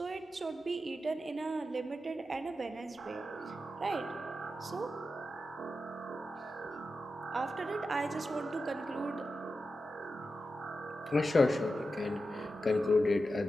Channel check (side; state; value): both; normal; correlation 0.90